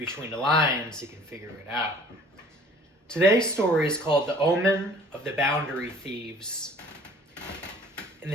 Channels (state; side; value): normal; both; correlation 0.52